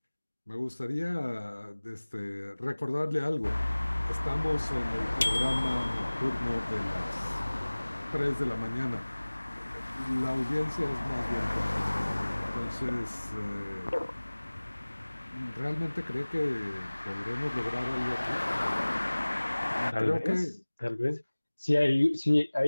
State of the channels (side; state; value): both; inverted; correlation -1.00